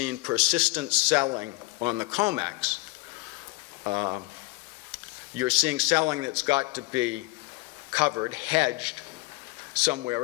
persistent selling on the COMEX, you're seeing selling that's got to be covered, hedged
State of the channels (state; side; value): quieter; right; 23.3 dB